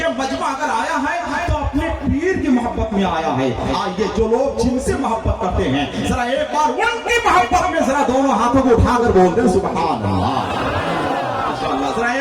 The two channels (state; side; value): identical; both; correlation 1.00